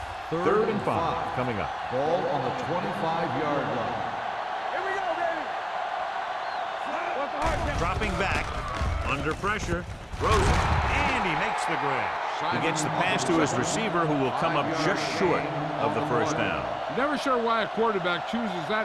Third and 5 coming up. Ball on the 25-yard line. Here we go, baby. What's the hard count? Dropping back. Under pressure. Throws it. And he makes the grab. He gets the pass to his receiver, who will come up just short of the first down. Never sure why a quarterback chooses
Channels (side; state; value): both; identical; correlation 1.00